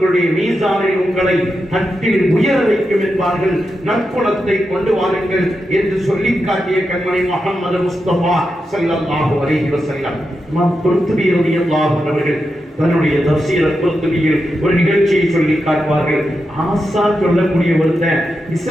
மீசானில் உங்களை தட்டில் உயர வைக்கும் என்பார்கள். நற்குணத்தை கொண்டு வாருங்கள் என்று சொல்லி காட்டிய கண்மணி முஹம்மது முஸ்தபா ஸல்லல்லாஹு அலைஹி வஸல்லம். இமாம் குர்துபி ரலியல்லாஹு அன்ஹு அவர்கள் தன்னுடைய தஃசீர் குர்துபியில் ஒரு நிகழ்ச்சியை சொல்லி காட்டுவார்கள். ஆசான் சொல்லக்கூடிய ஒருத்தன்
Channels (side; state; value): both; normal; correlation 0.88